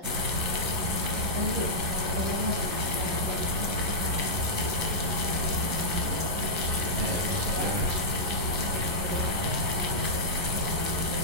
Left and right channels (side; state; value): left; late; 11 ms